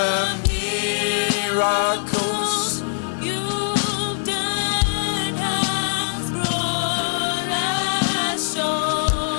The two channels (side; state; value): right; silent; digital silence